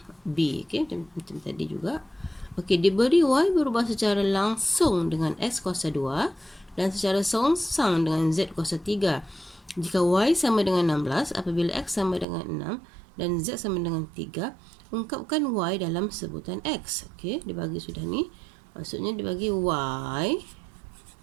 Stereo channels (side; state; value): left; drops out; at 12.2 s